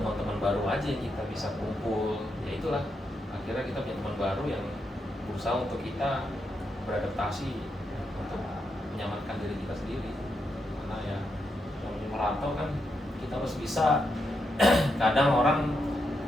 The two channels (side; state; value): both; normal; correlation 0.83